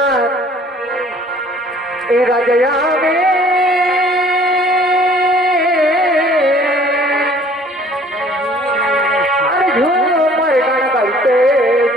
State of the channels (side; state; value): both; normal; correlation 0.54